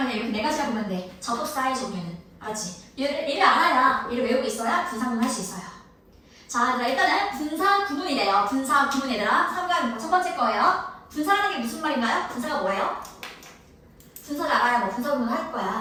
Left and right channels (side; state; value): both; identical; correlation 1.00